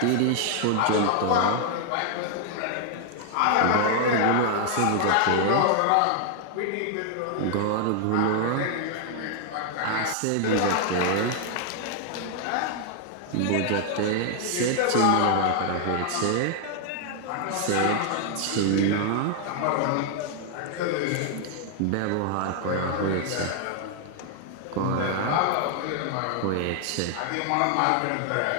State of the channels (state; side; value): different; both; correlation 0.00